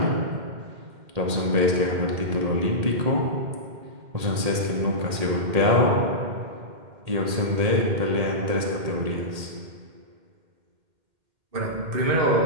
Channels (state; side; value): late; left; 1.8 ms